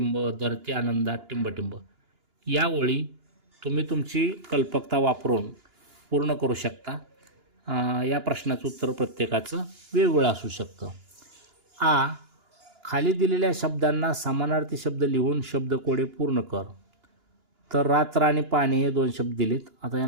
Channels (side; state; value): left; late; 2.9 ms